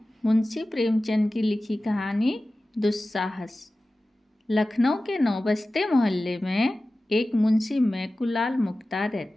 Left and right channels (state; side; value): normal; both; correlation 0.96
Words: मुंशी प्रेमचंद की लिखी कहानी दुस्साहस। लखनऊ के नौबस्ते मोहल्ले में एक मुंशी मैकुलाल मुख्तार